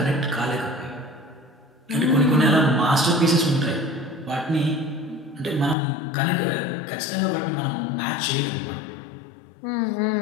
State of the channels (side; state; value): right; drops out; at 5.8 s